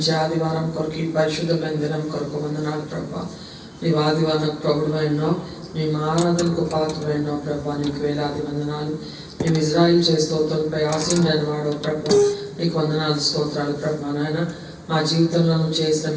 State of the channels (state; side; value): identical; both; correlation 1.00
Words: ఆదివారం కొరకు, ఈ పరిశుద్ధమైన దినం కొరకు వందనాలు ప్రభా. నీవు ఆదివారం ప్రభుడువైనావు, నీ ఆరాధనకు పాత్రమైనావు ప్రభా. నీకు వేలాది వందనాలు. మేము ఇజ్రాయిల్ చే స్తోత్రంపై ఆశీనుడైన వాడు ప్రభా. నీకు వందనాలు స్తోత్రాలు ప్రభా. నాయన మా జీవితంలో చేసిన